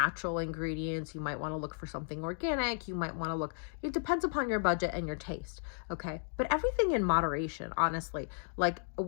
ingredients. You might want to look for something organic. You might want to look, it depends upon your budget and your taste. Okay. But everything in moderation, honestly. Like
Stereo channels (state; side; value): silent; right; digital silence